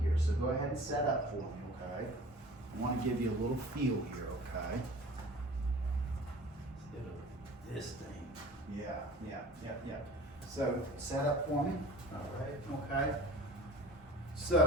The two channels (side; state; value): both; normal; correlation 0.42